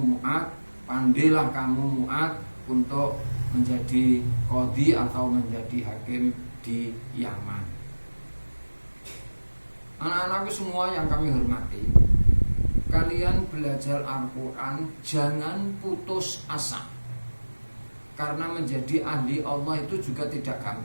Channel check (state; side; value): inverted; both; correlation -1.00